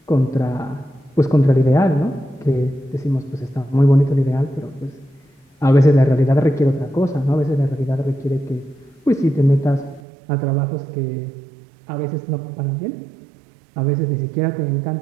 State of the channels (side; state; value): left; drops out; at 10.0 s